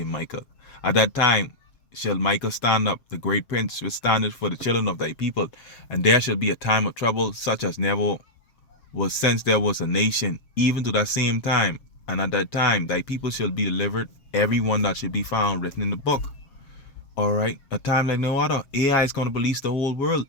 Michael. At that time shall Michael stand up, the great prince, which standeth for the children of thy people. And there shall be a time of trouble, such as never was since there was a nation, even to that same time. And at that time thy people shall be delivered, every one that should be found written in the book. All right. A time like no other. AI is going to police the whole world.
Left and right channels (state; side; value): late; right; 7.9 ms